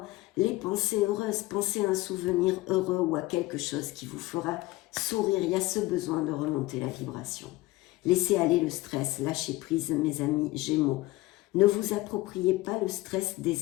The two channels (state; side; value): quieter; right; 19.4 dB